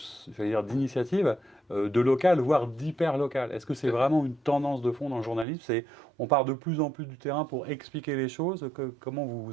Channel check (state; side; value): drops out; left; at 5.5 s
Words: j'allais dire, d'initiatives de local, voire d'hyper local. Est-ce que c'est vraiment une tendance de fond dans le journalisme? On part de plus en plus du terrain pour expliquer les choses. Comment